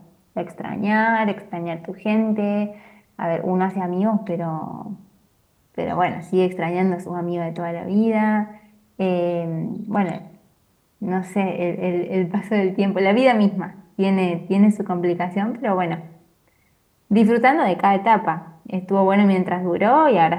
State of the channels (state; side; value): identical; both; correlation 1.00